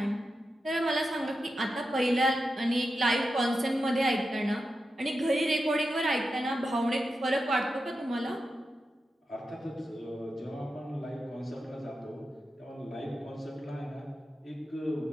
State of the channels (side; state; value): both; normal; correlation 0.90